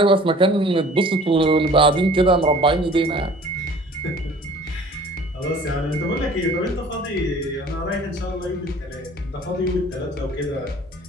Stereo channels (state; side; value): normal; both; correlation 0.49